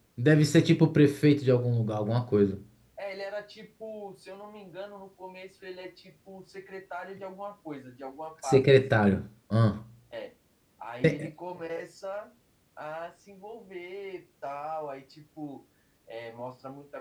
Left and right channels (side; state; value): both; identical; correlation 1.00